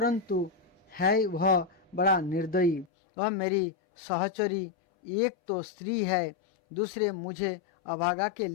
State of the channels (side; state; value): right; drops out; at 2.9 s